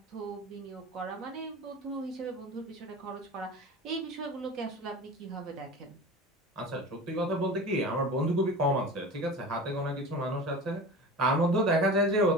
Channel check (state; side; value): normal; both; correlation 0.34